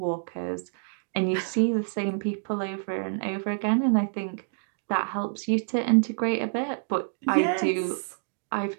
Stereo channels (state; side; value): silent; left; digital silence